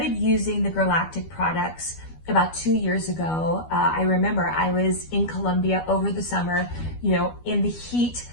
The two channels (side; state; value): right; late; 12 ms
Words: using the Girlactik products about 2 years ago. I remember I was in Colombia over the summer, you know, in the heat,